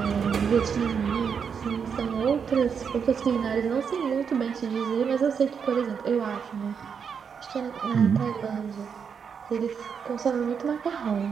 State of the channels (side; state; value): left; quieter; 6.7 dB